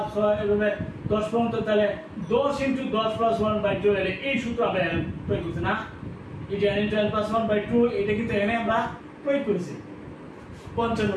6 এভাবে 10 পর্যন্ত তাহলে 10 × 10 + 1/2 এর এই সূত্র আমরা প্রয়োগ করছি না এই যে n * n + 1/2 এটা কিন্তু এখানে আমরা প্রয়োগ করেছি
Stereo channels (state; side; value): identical; both; correlation 1.00